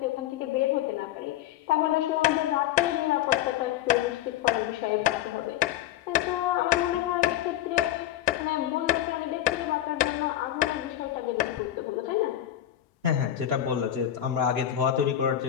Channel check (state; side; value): quieter; right; 12.1 dB